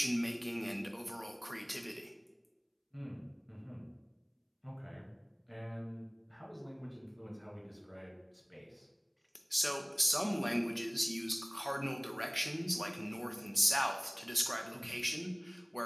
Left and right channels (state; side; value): identical; both; correlation 1.00